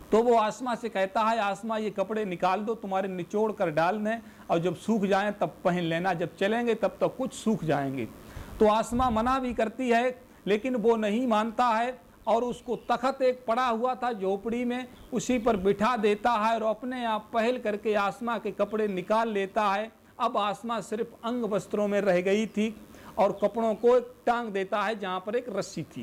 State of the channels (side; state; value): both; identical; correlation 1.00